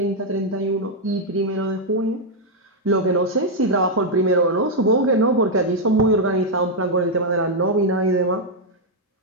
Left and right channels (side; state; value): both; normal; correlation -0.02